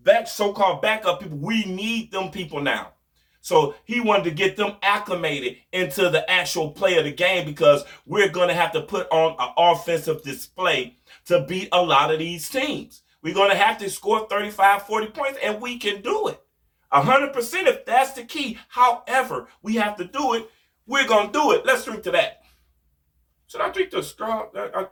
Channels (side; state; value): both; identical; correlation 1.00